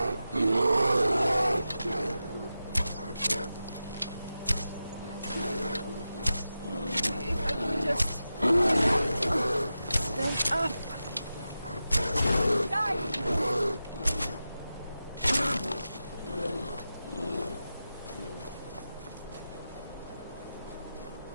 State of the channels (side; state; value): both; inverted; correlation -0.92